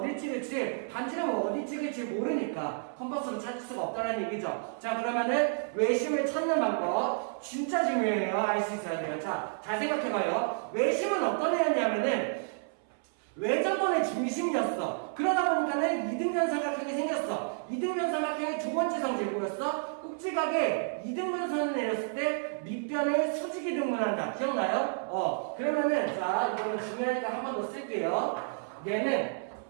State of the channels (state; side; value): silent; left; 57 dB below the other